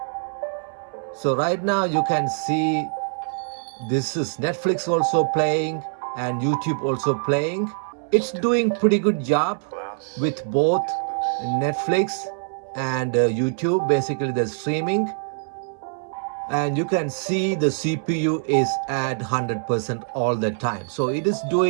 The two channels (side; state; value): left; silent; 63 dB below the other